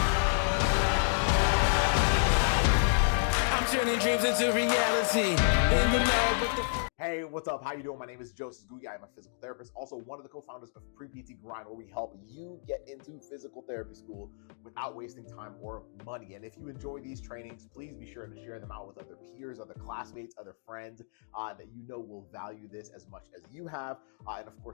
I'm turning dreams into reality. In the lab with the Hey, what's up? How you doing? My name is Joseph Ngugi. I'm a physical therapist, also one of the co-founders of Pre-PT Grind, where we help you get into physical therapy school without wasting time or money. And if you enjoy these trainings, please be sure to share them out with other peers, other classmates, other friends that you know will value this as much as you have. And of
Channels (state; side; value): silent; right; digital silence